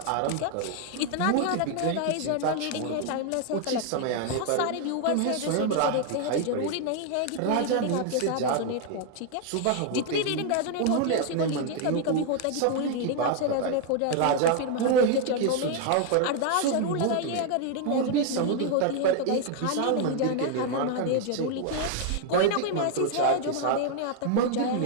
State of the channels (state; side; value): different; both; correlation 0.00